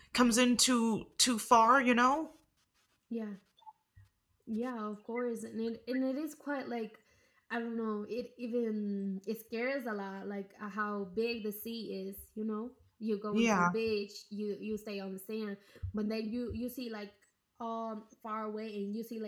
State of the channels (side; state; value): both; identical; correlation 1.00